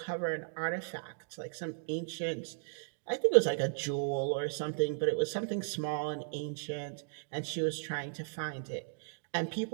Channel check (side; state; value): left; silent; digital silence